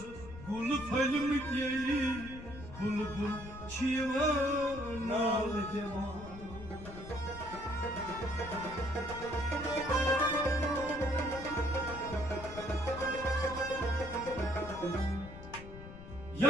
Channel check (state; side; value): noise; left; rumble, 13 dB below the sound